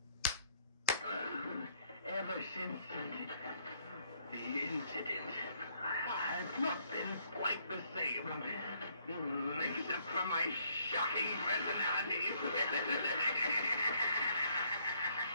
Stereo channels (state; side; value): inverted; both; correlation -0.68